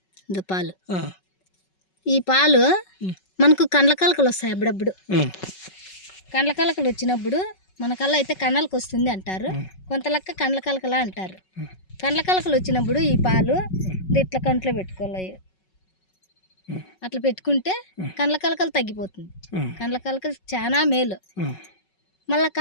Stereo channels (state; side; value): late; right; 5.4 ms